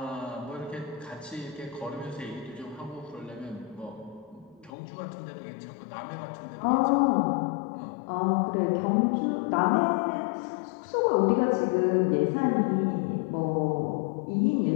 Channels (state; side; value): drops out; right; at 4.7 s